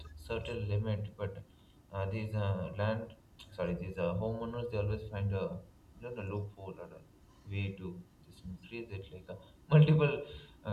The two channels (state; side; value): identical; both; correlation 1.00